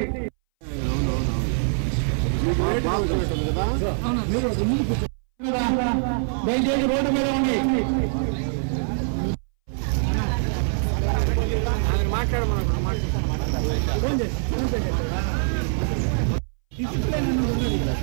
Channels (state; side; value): silent; left; 62 dB below the other